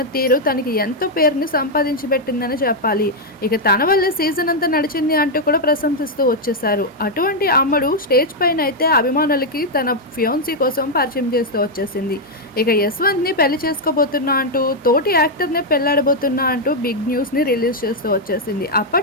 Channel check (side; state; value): both; normal; correlation -0.01